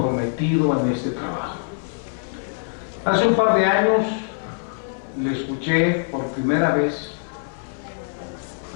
en este trabajo. Hace un par de años le escuché por primera vez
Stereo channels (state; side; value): silent; right; 58 dB below the other